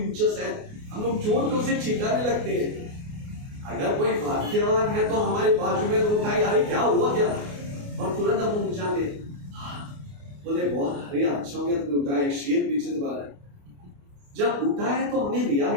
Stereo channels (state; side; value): late; left; 28 ms